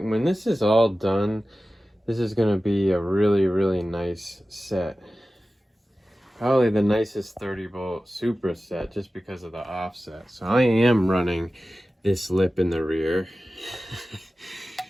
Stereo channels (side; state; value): both; normal; correlation 0.95